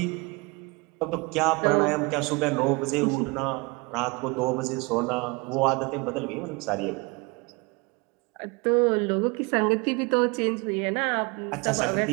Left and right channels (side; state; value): left; quieter; 27.4 dB